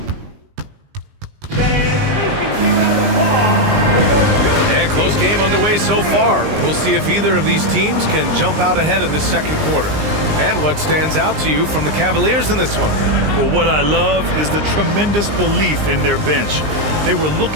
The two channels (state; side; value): late; left; 20 ms